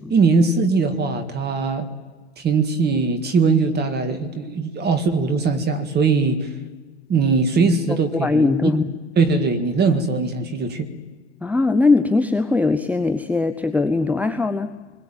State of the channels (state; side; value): normal; both; correlation 0.56